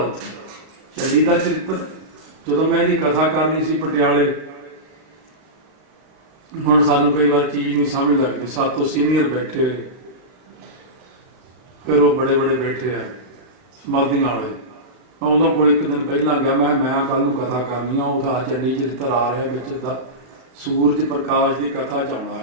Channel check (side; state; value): left; late; 39 ms